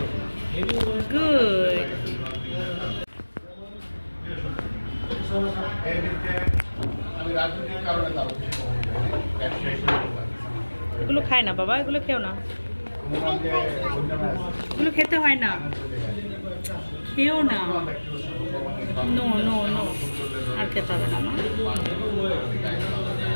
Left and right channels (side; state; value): both; inverted; correlation -1.00